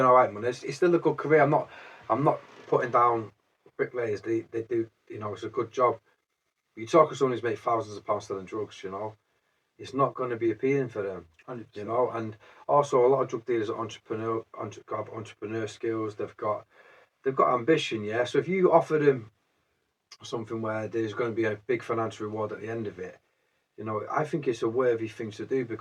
all right money. It's still a good career. I'm not putting down bricklayers. They do, you know, it's a good job. You talk to someone who's made thousands of pounds selling drugs, you know, it's not going to be appealing for them. 100%. You know, and also a lot of drug dealers are entrepreneur skills. They've got ambition, yeah. So if you offer them something where there's going to be a big financial reward at the end of it, you know, I think it's a worthy thing to do,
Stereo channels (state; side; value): identical; both; correlation 1.00